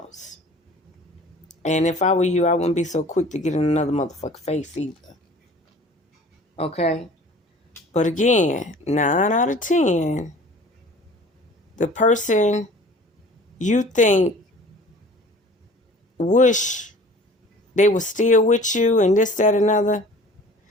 And if I were you, I wouldn't be so quick to get in another motherfucking face either. Okay? But again, 9 out of 10, the person you think wish they were still with you and this, that, another.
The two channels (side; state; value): both; normal; correlation 0.46